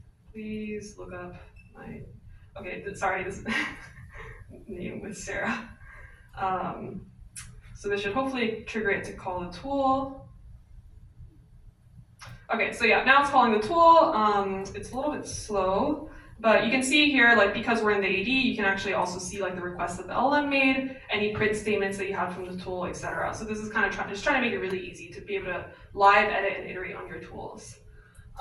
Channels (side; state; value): both; identical; correlation 1.00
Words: please look up my, okay, sorry, this name was Sarah. So this should hopefully trigger it to call the tool. Okay, so yeah, now it's calling the tool. It's a little bit slow, but you can see here, like because we're in the AD, you can actually also see like the requests that the LLM made, any print statements that you had from the tool, etc. So this is kind of just trying to make it really easy to be able to live edit and iterate on your tools.